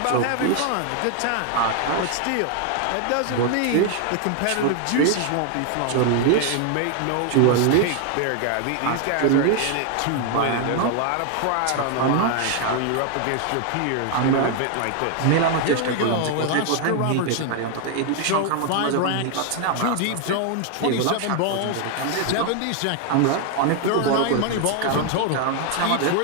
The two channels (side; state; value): both; different; correlation 0.00